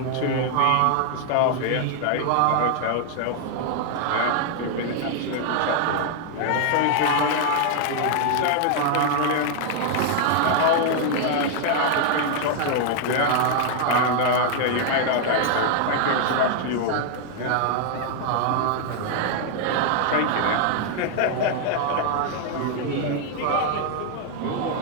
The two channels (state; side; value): different; both; correlation 0.00